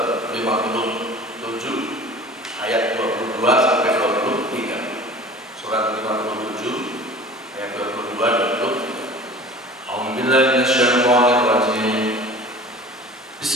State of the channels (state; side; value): normal; both; correlation 0.41